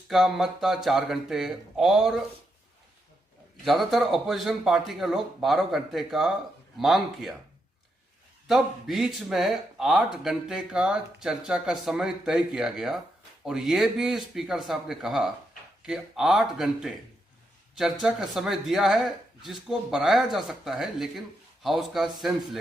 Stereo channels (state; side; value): normal; both; correlation 0.82